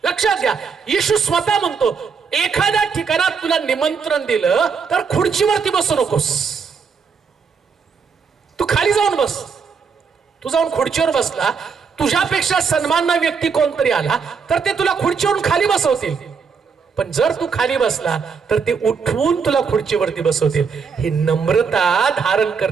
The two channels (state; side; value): quieter; left; 5.8 dB